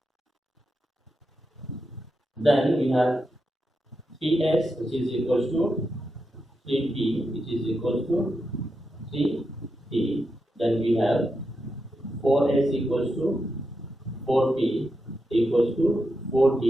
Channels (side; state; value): both; normal; correlation 0.86